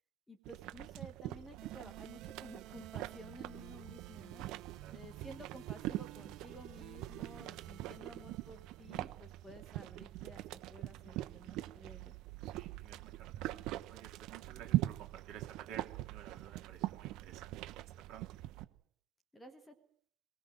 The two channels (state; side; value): quieter; left; 13.1 dB